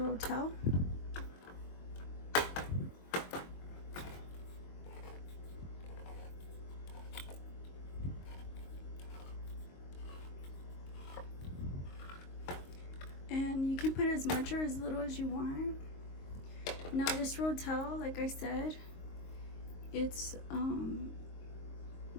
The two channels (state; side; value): late; right; 22 ms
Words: And you can put as much or as little as you want. Now this Rotel, like I said, it's